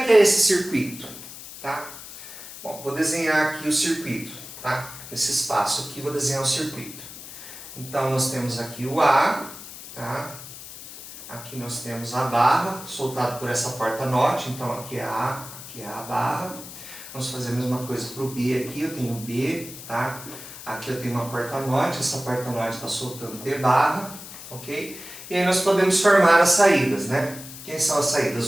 que é esse circuito, tá? Bom, vou desenhar aqui o circuito, tá? Esse espaço aqui, vou desenhar o circuito. Então, nós temos aqui o A, tá? Aqui nós temos a barra, soltado por essa porta NOT. Então, aqui é a barra. Vamos fazer a mesma coisa para o B aqui. Eu tenho B, tá? Aqui eu tenho uma porta NOT. Essa porta NOT está soltando B barra, ok? E aí nós podemos formar as saídas, né? Quem são as saídas?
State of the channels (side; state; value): left; noise; hiss, 13 dB below the sound